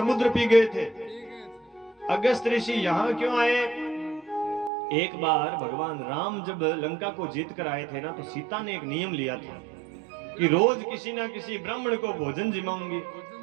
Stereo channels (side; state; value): left; drops out; at 4.7 s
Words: पी गए थे। अगस्त ऋषि यहाँ क्यों आए? एक बार भगवान राम जब लंका को जीत कर आए थे ना, तो सीता ने एक नियम लिया था कि रोज किसी ना किसी ब्राह्मण को भोजन जिमाऊंगी।